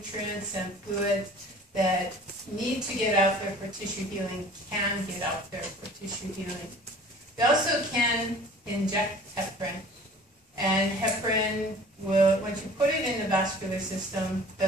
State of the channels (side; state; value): both; normal; correlation 0.47